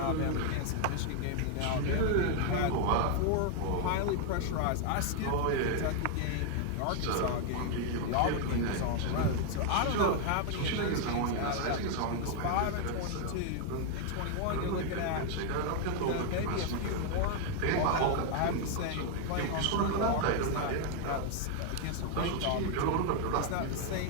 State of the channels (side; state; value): both; different; correlation 0.00